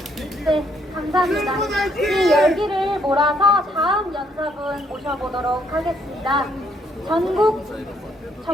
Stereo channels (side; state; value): both; normal; correlation 0.70